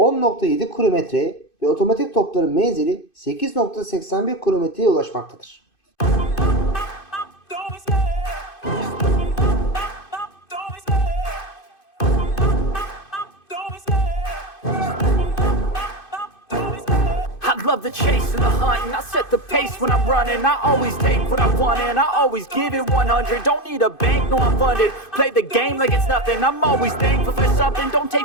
kilometreye ve otomatik topların menzili 8.81 kilometreye ulaşmaktadır. Love the chase and the hunt, and I set the pace when I'm running. I always take what I want and I always give it 100. Don't need a bank, no I'm funded. Play the game like it's nothing. I'm always thankful for something. Don't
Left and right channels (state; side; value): late; right; 2.5 ms